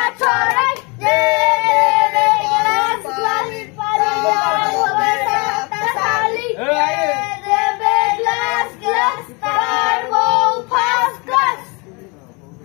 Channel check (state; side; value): quieter; right; 29.2 dB